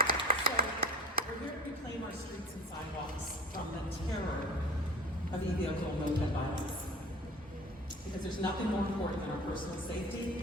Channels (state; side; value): normal; both; correlation 0.38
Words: So, we're here to reclaim our streets and sidewalks from the terror of e-vehicle moped violence. Because there's nothing more important than our personal